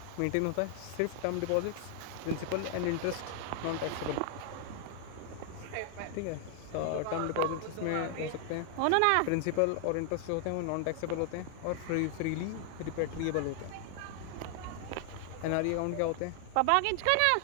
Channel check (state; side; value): different; both; correlation 0.00